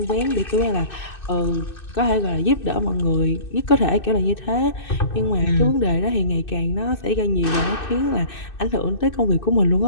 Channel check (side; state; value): right; late; 2.6 ms